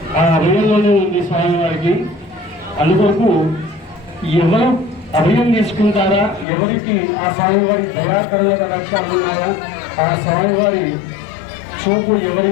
ఆ అభయంలోనే ఉంది స్వామివారికి. అందుకొరకు ఎవరు అభయం తీసుకుంటారా ఎవరికి ఆ స్వామివారి దయాకరణ లక్ష్యాలు ఉన్నాయా ఆ స్వామివారి చూపు ఎవరి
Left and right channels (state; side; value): drops out; right; at 6.5 s